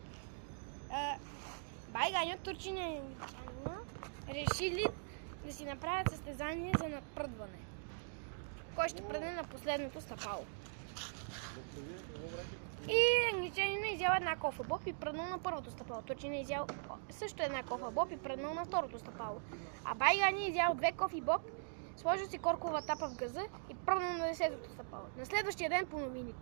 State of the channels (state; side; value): silent; left; digital silence